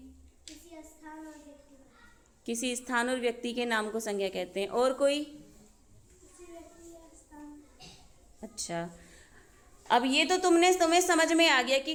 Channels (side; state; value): both; identical; correlation 1.00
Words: किसी स्थान और व्यक्ति, किसी स्थान और व्यक्ति के नाम को संज्ञा कहते हैं। और कोई? किसी व्यक्ति या स्थान। अच्छा, अब ये तो तुम्हें समझ में आ गया कि